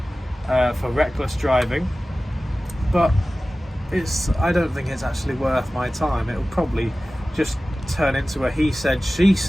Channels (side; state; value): both; normal; correlation 0.96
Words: for reckless driving, but I don't think it's actually worth my time. It'll probably just turn into a he said, she